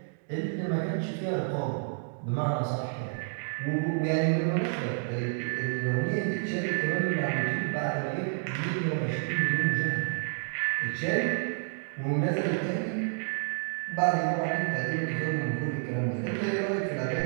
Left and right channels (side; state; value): left; silent; digital silence